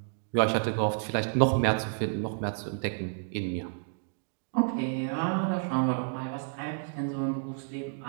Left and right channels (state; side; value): silent; left; 58 dB below the other